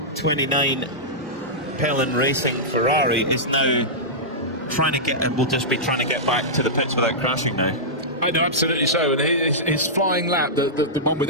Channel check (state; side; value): normal; both; correlation -0.13